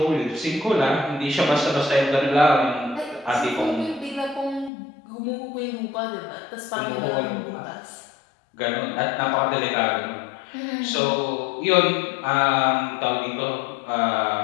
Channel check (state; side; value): drops out; right; at 4.7 s